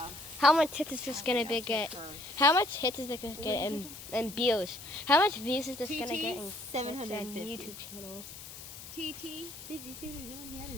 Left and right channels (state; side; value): noise; left; hiss, 13 dB below the sound